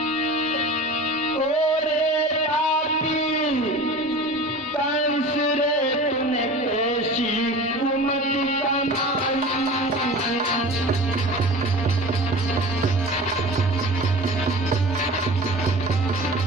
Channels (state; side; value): normal; both; correlation 0.37